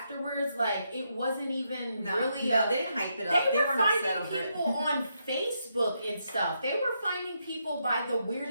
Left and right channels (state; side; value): inverted; both; correlation -0.80